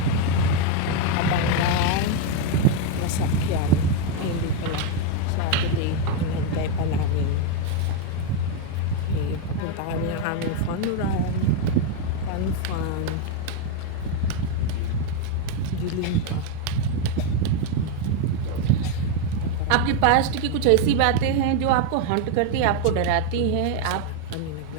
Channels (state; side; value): different; both; correlation 0.01